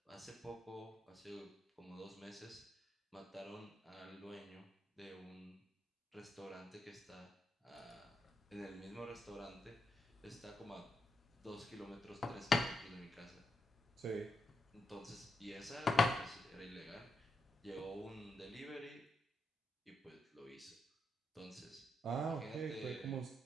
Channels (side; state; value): both; normal; correlation 0.84